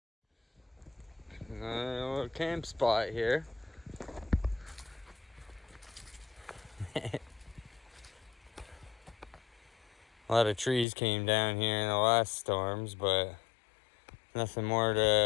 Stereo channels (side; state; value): right; drops out; at 10.9 s